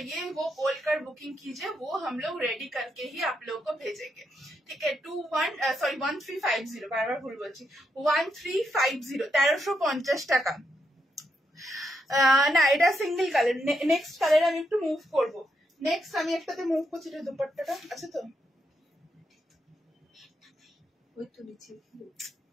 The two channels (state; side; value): normal; both; correlation 0.81